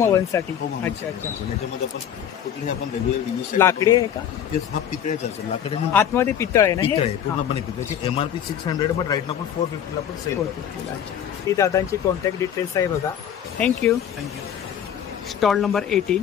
ओव्हनसाठी. अच्छा. त्याच्यामध्ये आपण कुठलीही आपण रेग्युलर लाकडी आहे का? हा पितळेचा असेल. लाकडे आतमध्ये पितळ आहे ना? पितळ आहे, पूर्णपणे पितळाची. MRP 600 बट राईट ना आपण 450 आपण सेल करतो. ही दादांची कॉन्टॅक्ट डिटेल्स आहे बघा. थँक्यू. Stall number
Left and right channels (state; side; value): quieter; right; 9.2 dB